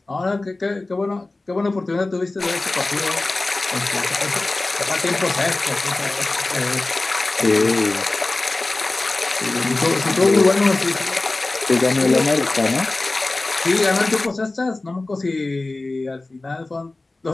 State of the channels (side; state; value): right; quieter; 3.1 dB